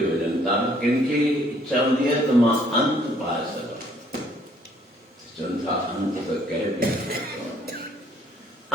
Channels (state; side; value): normal; both; correlation 0.63